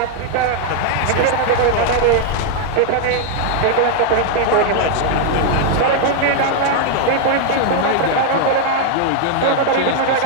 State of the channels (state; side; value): different; both; correlation 0.00